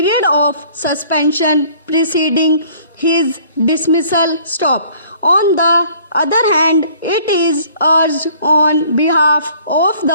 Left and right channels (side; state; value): both; inverted; correlation -0.55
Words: of suspension preceding his dismissal. Stop. On the other hand, it is urged on behalf of